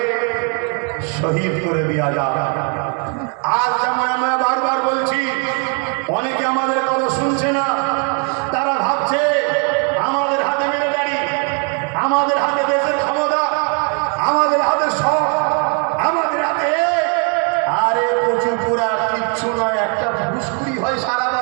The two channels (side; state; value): left; quieter; 39.2 dB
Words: শহীদ করে দেওয়া যায়। আজ যেমন আমরা বারবার বলছি, অনেকে আমাদের কথা শুনছে না। তারা ভাবছে আমাদের হাতে মিলিটারি, আমাদের হাতে দেশের ক্ষমতা, আমাদের হাতে সব, আমাদের হাতে। আরে প্রচুর পুরা কিচ্ছু নয়, একটা ঘুষখুরি হয়